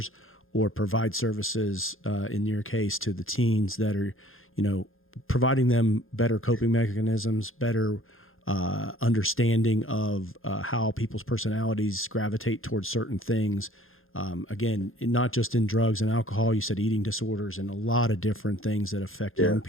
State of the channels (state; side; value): late; right; 0.60 ms